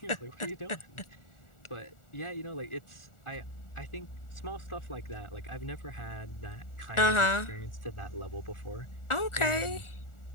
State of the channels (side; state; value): right; late; 1.4 ms